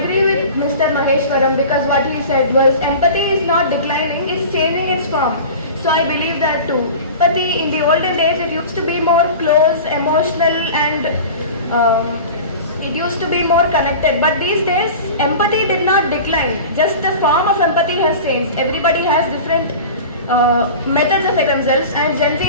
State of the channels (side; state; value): both; inverted; correlation -0.36